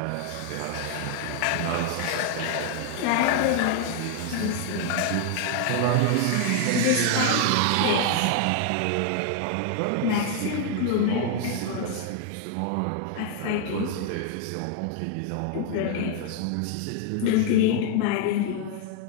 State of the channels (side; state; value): both; different; correlation 0.00